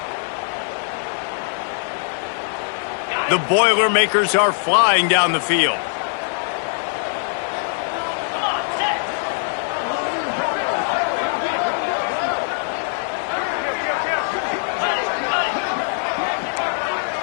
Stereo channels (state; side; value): silent; right; digital silence